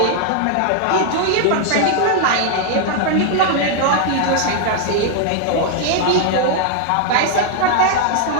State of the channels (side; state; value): both; different; correlation 0.00